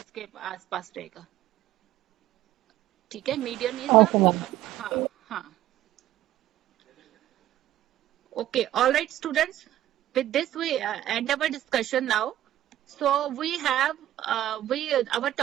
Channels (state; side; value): quieter; left; 13.4 dB